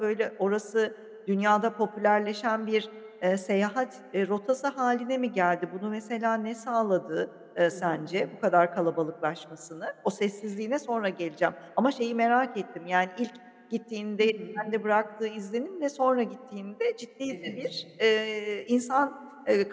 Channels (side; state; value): both; identical; correlation 1.00